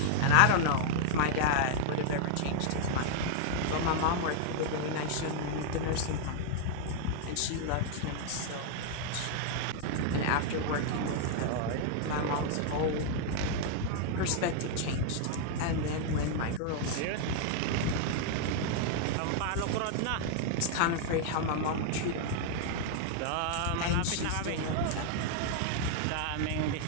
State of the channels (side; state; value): both; different; correlation 0.00